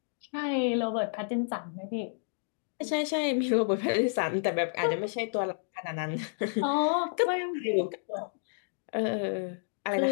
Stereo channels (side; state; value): right; silent; digital silence